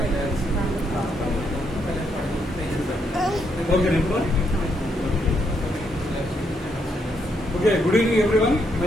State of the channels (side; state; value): both; normal; correlation 0.76